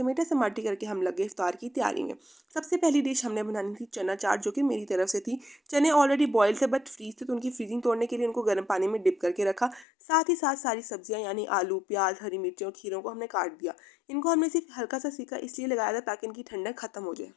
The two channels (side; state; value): right; drops out; at 9.9 s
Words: समाटी करके हम लगे इफ्तार की तैयारी में। सबसे पहली डिश हमने बनानी थी चना चाट, जो कि मेरी तरफ से थी। चने ऑलरेडी बॉयल थे बट फ्रीज थे, तो उनकी फ्रीजिंग तोड़ने के लिए उनको गर्म पानी में डिप करके रखा। साथ ही साथ सारी सब्जियां यानी आलू, प्याज, हरी मिर्चें और खीरों को हमने काट दिया। इनको हमने सिर्फ हल्का सा सेका इसलिए लगाया था ताकि इनकी ठंडक खत्म हो जाए।